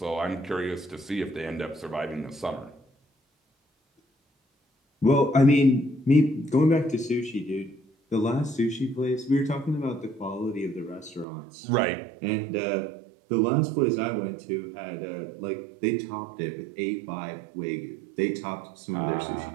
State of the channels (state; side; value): drops out; left; at 11.2 s